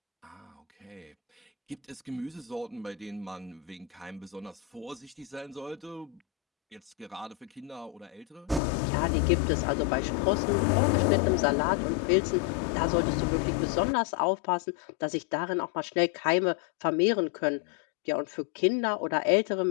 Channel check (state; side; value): drops out; right; at 8.6 s